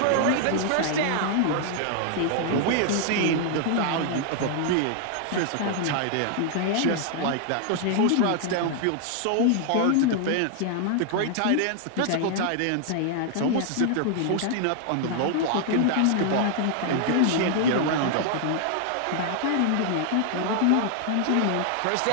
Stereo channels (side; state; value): both; different; correlation 0.00